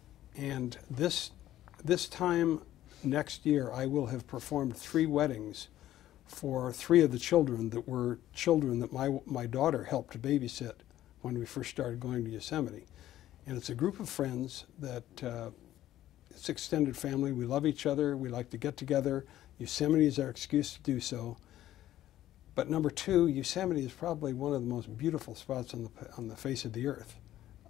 And this time next year, I will have performed 3 weddings for 3 of the children that were children that my daughter helped to babysit when we first started going to Yosemite. And it's a group of friends that, it's extended family. We love each other. We like to get together. Yosemite is our excuse to do so. But number 2, Yosemite is probably one of the most beautiful spots on the face of the earth.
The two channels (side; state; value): right; quieter; 13.3 dB